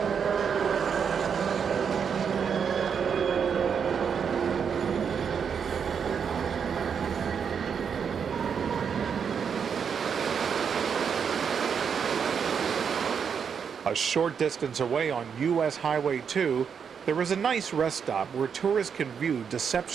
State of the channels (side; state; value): left; quieter; 6.9 dB